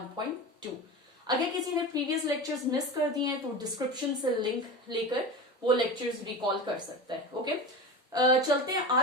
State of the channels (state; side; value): normal; both; correlation 0.28